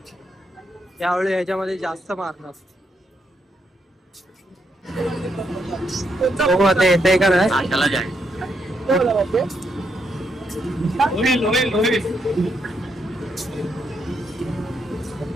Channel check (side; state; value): both; normal; correlation 0.78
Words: यावेळी ह्याच्यामध्ये जास्त मारणार. हो आता येते का नाही.